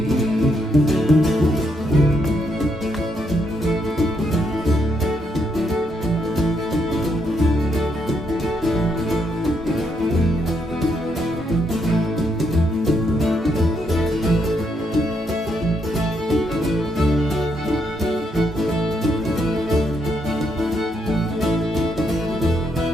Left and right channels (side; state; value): both; normal; correlation 0.77